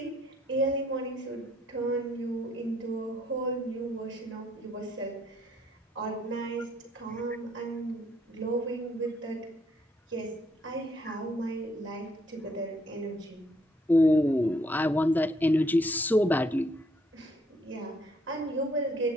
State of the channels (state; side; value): normal; both; correlation 0.68